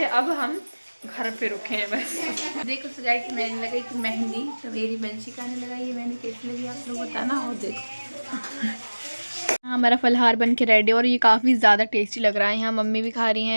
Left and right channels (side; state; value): both; inverted; correlation -1.00